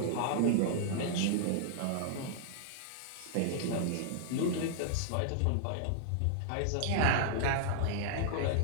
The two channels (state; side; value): different; both; correlation -0.01